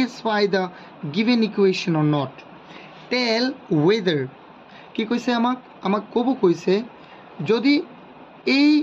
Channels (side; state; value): both; identical; correlation 1.00